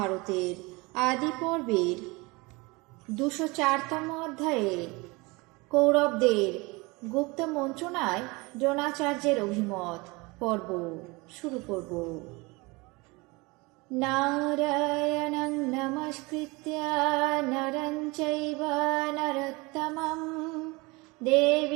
আদি পর্বের 204তম অধ্যায়ে কৌরবদের গুপ্ত মন্ত্রণায় দ্রোণাচার্যের অভিমত পর্ব শুরু করব। নারায়ণং নমস্কৃত্য নরং চৈব নরোত্তমং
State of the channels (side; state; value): left; quieter; 25.2 dB